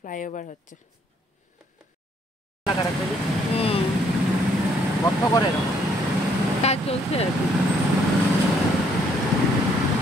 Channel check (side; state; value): both; normal; correlation 0.68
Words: হচ্ছে। কাজ চলছে আর কি,